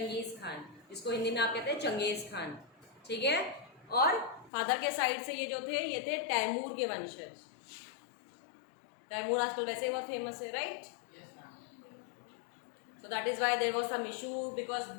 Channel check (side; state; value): right; drops out; at 4.5 s